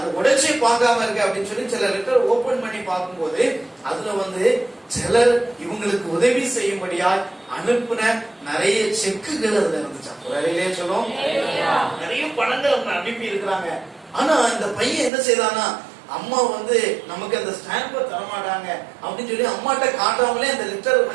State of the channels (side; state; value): left; drops out; at 15.1 s